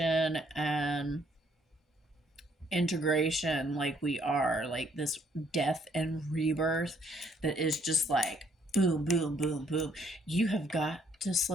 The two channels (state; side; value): normal; both; correlation 0.67